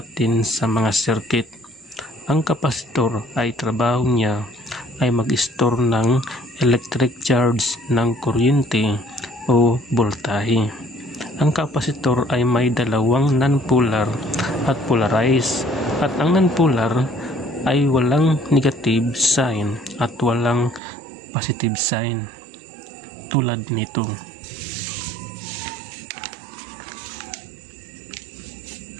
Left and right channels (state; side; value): drops out; left; at 20.8 s